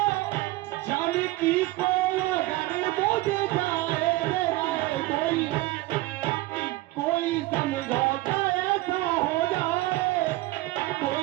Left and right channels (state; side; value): quieter; left; 18.8 dB